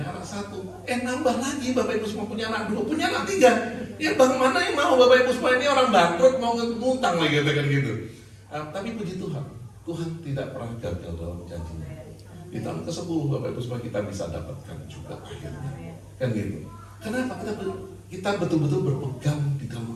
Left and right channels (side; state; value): both; identical; correlation 1.00